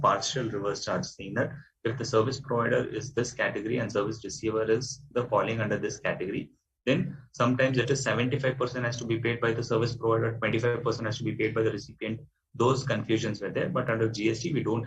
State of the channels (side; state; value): both; identical; correlation 1.00